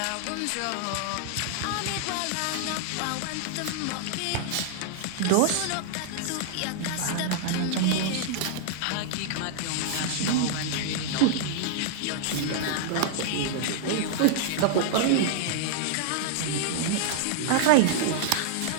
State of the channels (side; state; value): both; different; correlation -0.01